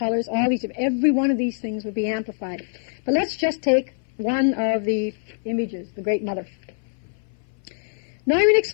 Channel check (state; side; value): silent; right; 57 dB below the other